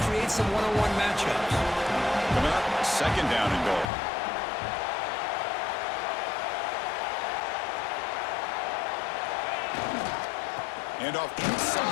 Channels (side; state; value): right; drops out; at 3.9 s